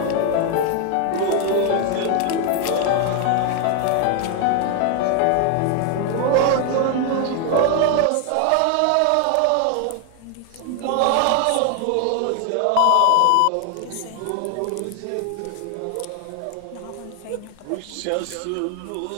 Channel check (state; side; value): different; both; correlation 0.00